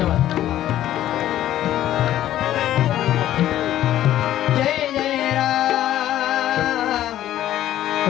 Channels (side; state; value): right; quieter; 12.7 dB